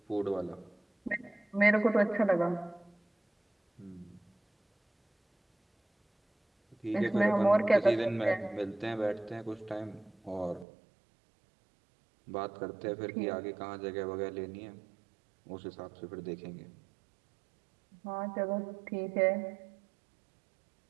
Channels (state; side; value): drops out; left; at 10.7 s